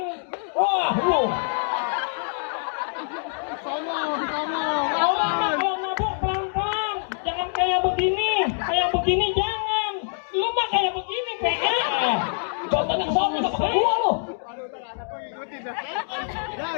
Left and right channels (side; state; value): right; silent; digital silence